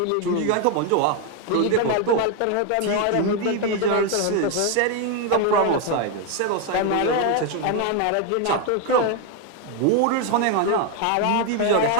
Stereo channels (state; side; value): different; both; correlation 0.01